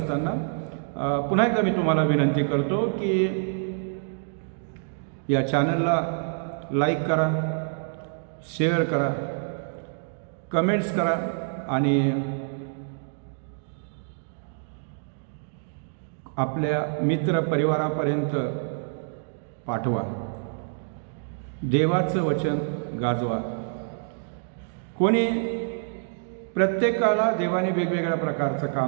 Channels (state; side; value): silent; left; digital silence